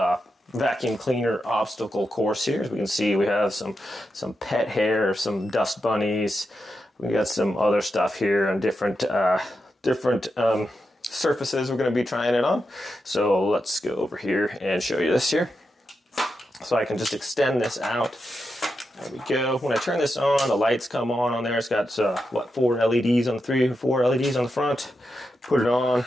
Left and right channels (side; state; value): both; normal; correlation 0.87